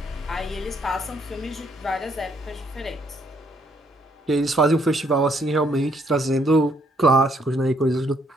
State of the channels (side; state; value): both; normal; correlation 0.70